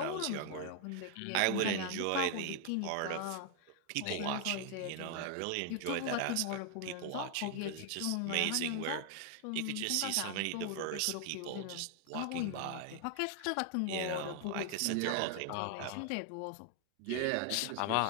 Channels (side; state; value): both; different; correlation 0.00